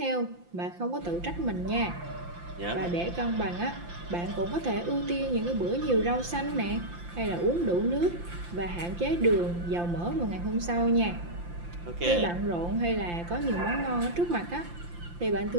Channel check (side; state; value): left; late; 5.8 ms